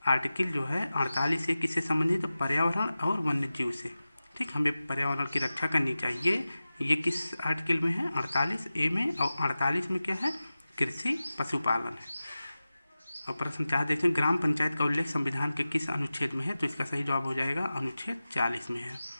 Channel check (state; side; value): inverted; both; correlation -0.95